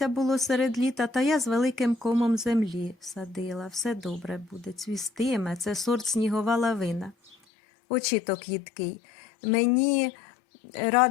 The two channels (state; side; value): drops out; right; at 7.4 s